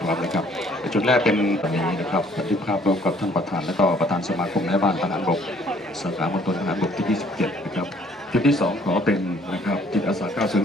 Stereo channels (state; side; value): normal; both; correlation 0.60